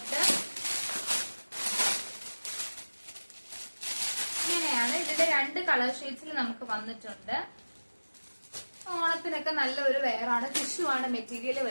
ഇങ്ങനെയാണ്. ഇതിന്റെ 2 കളർ ഷെയ്ഡ്സിൽ നമുക്ക് വന്നിട്ടുണ്ട്. ഓണത്തിനൊക്കെ നല്ലൊരു വെയറാണ്. ടിഷ്യൂ ആണ് മെറ്റീരിയൽ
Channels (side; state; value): both; inverted; correlation -1.00